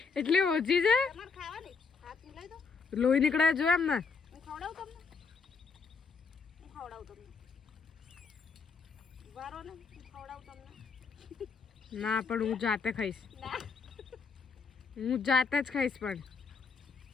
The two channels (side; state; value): right; quieter; 5.0 dB